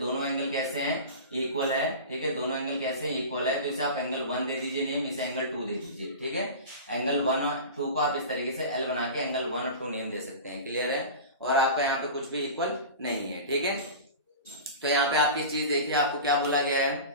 एंगल कैसे हैं, इक्वल है, ठीक है। दोनों एंगल कैसे इक्वल है, तो इसे आप एंगल 1 दे दीजिए नेम, इसे एंगल 2 दे दीजिए, ठीक है। एंगल 1 और 2 को आप इस तरीके से एल बना के एंगल 1 और 2 नेम दे सकते हैं, क्लियर है। और आपका यहाँ पे कुछ भी इक्वल नहीं है, ठीक है। तो यहाँ पे आपकी चीज देखिए, आपको क्या बोला गया है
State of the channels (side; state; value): both; inverted; correlation -0.32